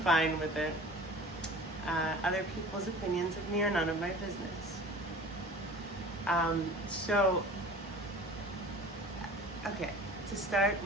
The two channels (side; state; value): both; normal; correlation 0.41